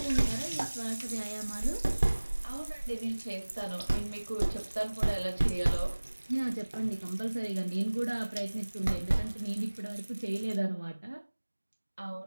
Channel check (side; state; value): both; inverted; correlation -1.00